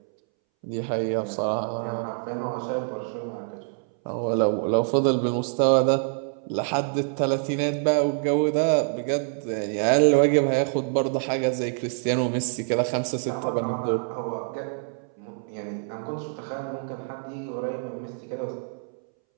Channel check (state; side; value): silent; left; 61 dB below the other